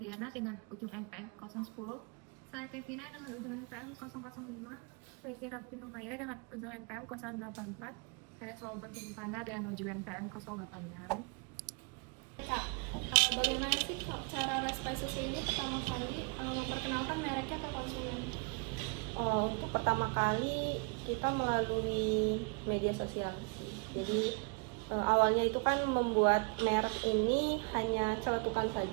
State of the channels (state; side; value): quieter; left; 33.4 dB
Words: dengan ujung NPM 010. Saya Kevina dengan ujung NPM 005. Saya Kira Pinumaya dengan ujung NPM 084. Saya Solbert Tumipana dengan ujung NPM 086. Kak, bagaimana sih cara Respai Susu ini pertama kali memperkenalkan mereknya ke konsumen? Untuk pertama kali kita melalui media sosial sih. Jadi awalnya itu kan membuat merek ini hanya celetukan